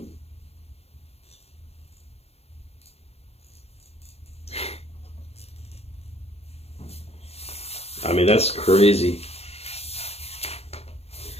I mean, that's crazy.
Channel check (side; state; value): right; late; 0.30 ms